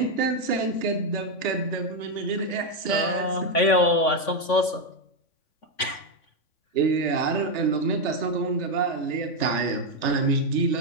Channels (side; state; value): right; late; 3.5 ms